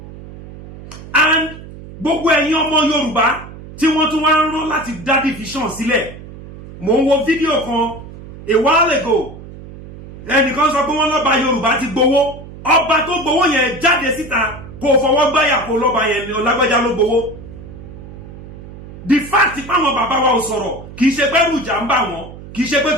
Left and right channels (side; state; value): right; noise; hum, 15 dB below the sound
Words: And gbogbo ẹ̀yin ọmọ Yorùbá tí wọ́n tún wá ń rán láti dá division sílẹ̀. Mo ń wo fídíò kan a while ago. Ẹnìkan sọ pé wọ́n lọ́ba Yorùbá ti gbowó. Ọba tó gbowó yẹn jáde síta kó fọwọ́ gbáyà kó lọ́ba yẹn ni Ọlágbájá ló gbowó. The fact pé àwọn bàbá wa ò sọ̀rọ̀ kì í ṣe pé ẹ̀rù ìjà ń bà wọ́n, kì í ṣe pé